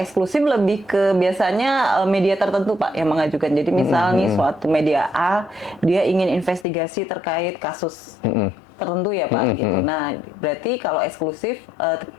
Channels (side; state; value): right; drops out; at 6.7 s